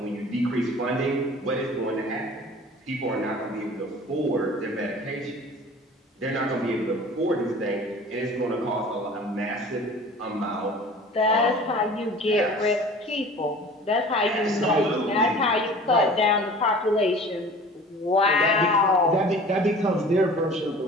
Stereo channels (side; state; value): both; normal; correlation 0.43